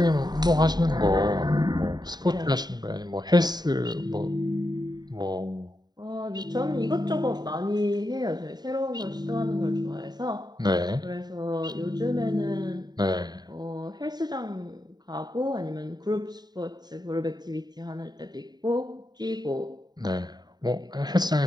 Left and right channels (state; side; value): late; left; 0.20 ms